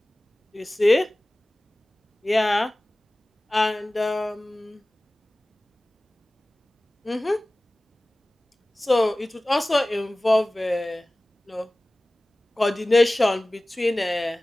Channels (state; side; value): normal; both; correlation 0.98